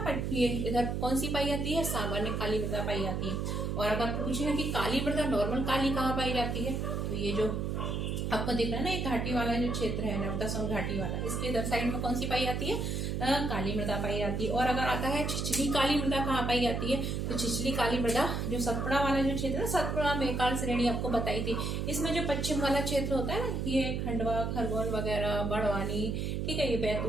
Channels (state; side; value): noise; right; hum, 1 dB below the sound